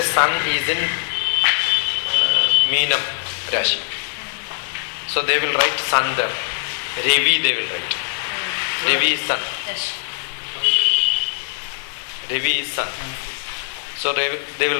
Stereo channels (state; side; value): silent; right; digital silence